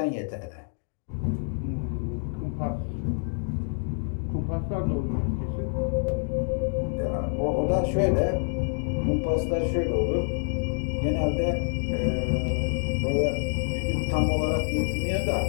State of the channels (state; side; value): silent; right; 60 dB below the other